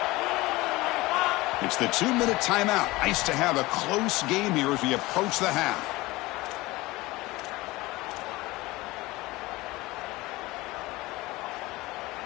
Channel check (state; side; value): quieter; right; 20.4 dB